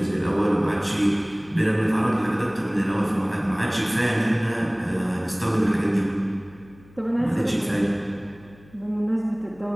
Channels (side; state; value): left; noise; hum, 25 dB below the sound